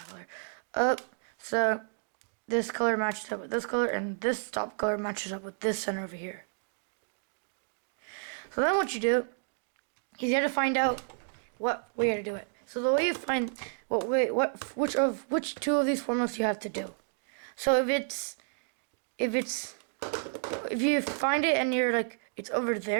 color. So this color matches up with this color, and this top color matches up with this center over here. So then what you do is you have to find out what way to do it. So the way you find which two of these formulas you have to do. So if you find it and you're like it's over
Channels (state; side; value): silent; left; digital silence